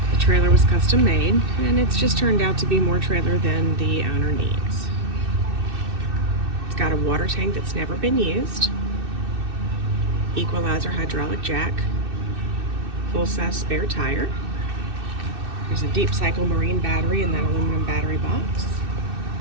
The trailer was custom made, and it's just turned out to be more trailer than the owner needs. It's got a water tank that's never been used, equalizer hydraulic jack, full-size spare tire. There's a deep cycle marine battery in that aluminum battery box.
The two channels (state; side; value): late; left; 2.6 ms